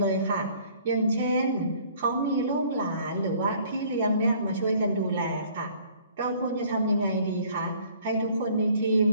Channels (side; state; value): both; inverted; correlation -0.56